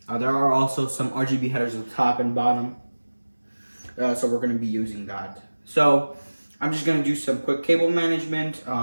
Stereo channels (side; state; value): both; inverted; correlation -1.00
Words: There are also some RGB headers at the top and bottom. So we're going to be using that. So I'm just gonna do some quick cable management,